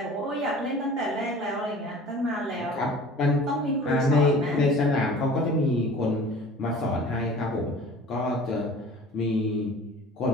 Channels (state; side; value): normal; both; correlation 0.44